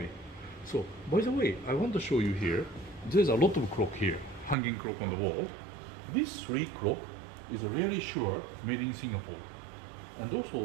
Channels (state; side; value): drops out; left; at 4.5 s